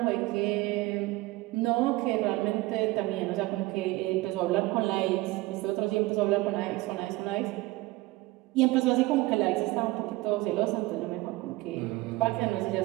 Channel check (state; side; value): quieter; left; 20.3 dB